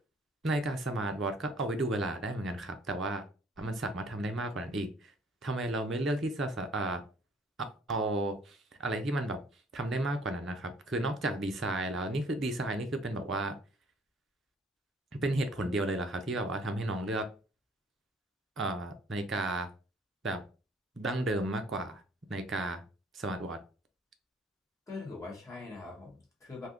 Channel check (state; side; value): normal; both; correlation 0.58